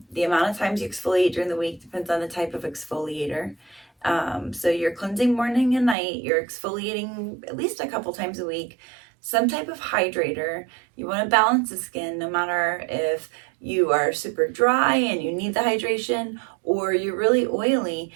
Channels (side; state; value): left; drops out; at 6.0 s